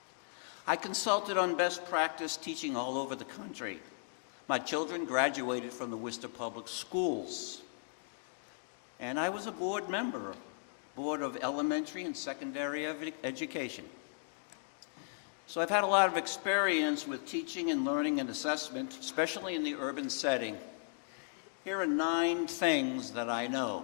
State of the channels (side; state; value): right; silent; digital silence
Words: I consulted on best practice teaching all over the country. My children graduated from the Worcester Public Schools. And I was a board member, Board of Elementary and Secondary Education. So I've had a lot of experience with teaching and learning and assessment, especially in the urban setting. Here are 9 things that I